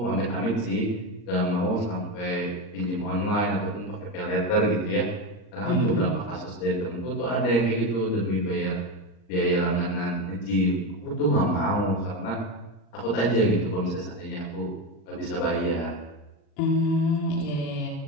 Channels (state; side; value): late; right; 39 ms